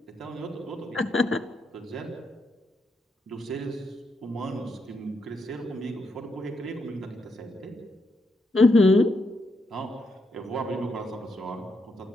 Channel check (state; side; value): normal; both; correlation 0.80